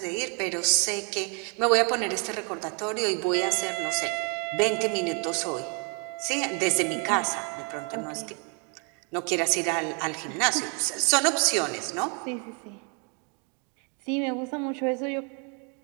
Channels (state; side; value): quieter; left; 36.9 dB